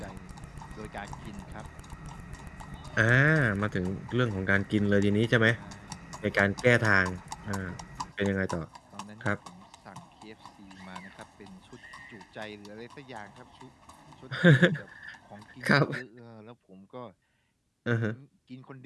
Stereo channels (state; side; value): identical; both; correlation 1.00